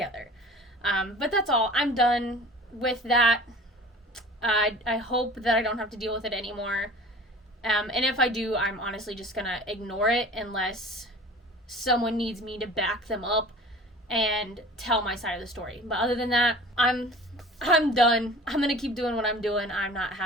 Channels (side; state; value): both; normal; correlation 0.42